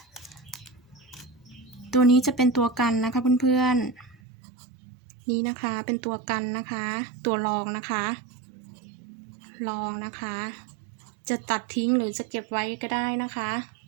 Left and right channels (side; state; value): left; drops out; at 4.2 s